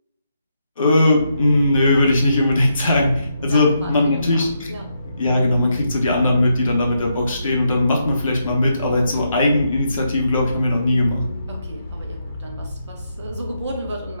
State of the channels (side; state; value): both; inverted; correlation -0.80